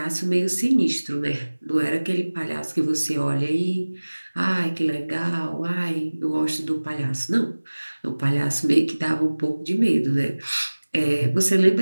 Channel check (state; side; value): inverted; both; correlation -1.00